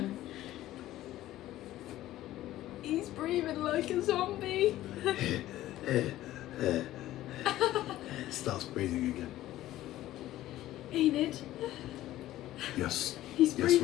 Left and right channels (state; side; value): quieter; right; 14.6 dB